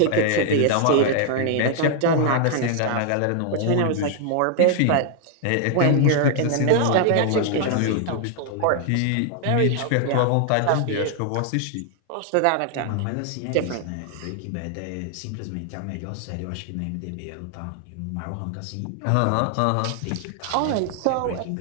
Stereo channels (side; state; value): both; different; correlation 0.00